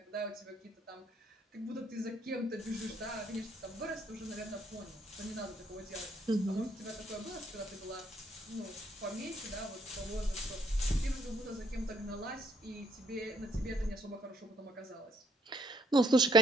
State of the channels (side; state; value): both; normal; correlation 0.68